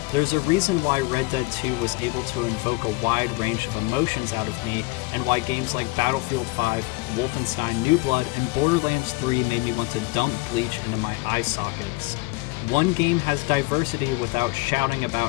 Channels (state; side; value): quieter; right; 23.2 dB